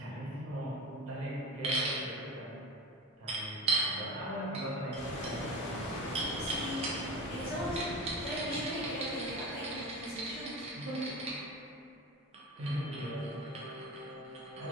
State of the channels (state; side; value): normal; both; correlation 0.29